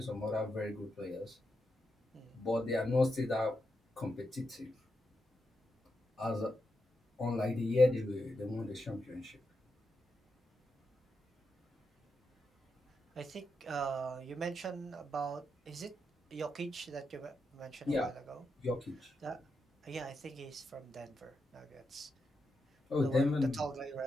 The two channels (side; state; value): both; normal; correlation 0.85